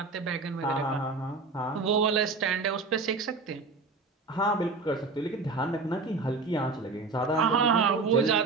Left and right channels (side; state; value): left; quieter; 4.0 dB